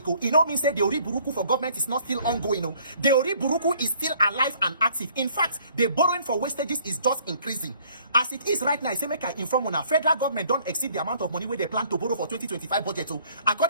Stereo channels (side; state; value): both; inverted; correlation -0.59